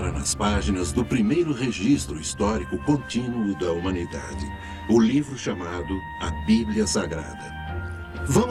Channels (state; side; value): identical; both; correlation 1.00